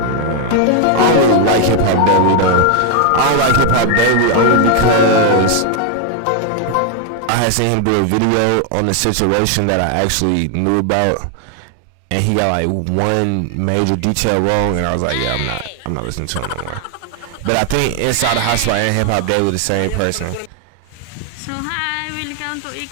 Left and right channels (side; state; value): both; different; correlation 0.01